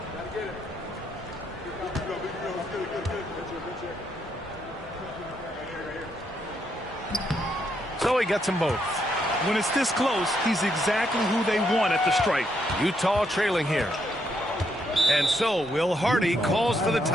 So he gets them both. when it's this close, he's exactly who they want at the stripe. Utah trailing here. And so Will Hardy calls for the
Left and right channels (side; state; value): both; normal; correlation 0.77